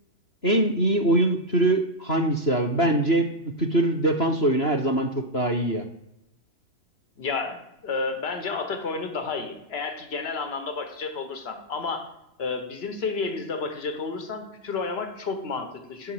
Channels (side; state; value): right; late; 3.0 ms